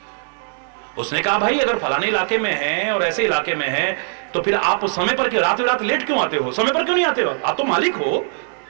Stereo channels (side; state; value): left; silent; digital silence